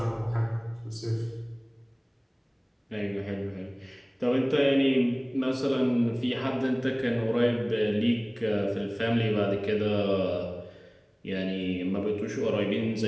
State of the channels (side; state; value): both; identical; correlation 1.00